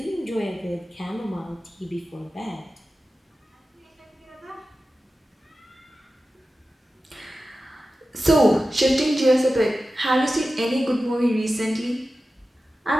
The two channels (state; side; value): normal; both; correlation 0.94